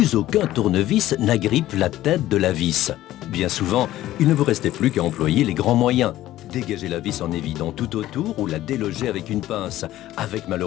aucun tournevis n'agrippe la tête de la vis. Bien souvent, il ne vous restait plus qu'à employer les grands moyens. Dégager la vis en évidant tout autour ou la déloger avec une pince, avec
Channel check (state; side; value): quieter; right; 14.6 dB